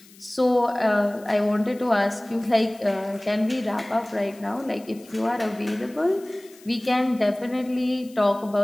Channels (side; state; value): left; noise; hiss, 25 dB below the sound